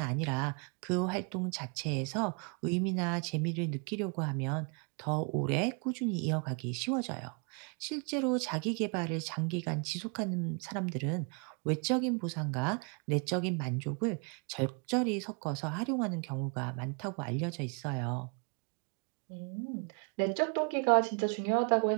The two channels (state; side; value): quieter; left; 36.9 dB